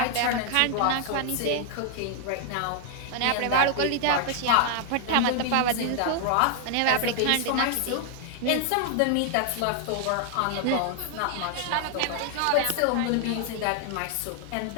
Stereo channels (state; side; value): different; both; correlation 0.00